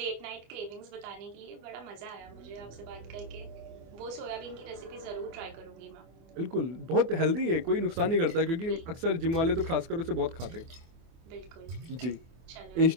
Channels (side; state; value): left; late; 24 ms